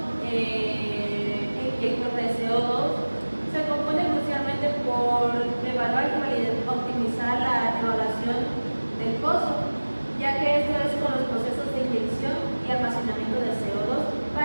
inyector de CO2 se compone crucialmente por evaluar y optimizar la evaluación del pozo, ya que esto es con los procesos de inyección y almacenamiento de CO2.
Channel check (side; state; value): both; inverted; correlation -1.00